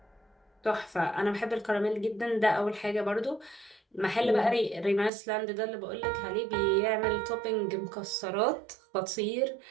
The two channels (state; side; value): drops out; left; at 5.1 s